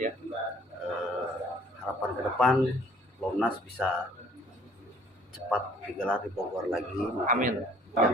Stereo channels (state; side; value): normal; both; correlation 0.57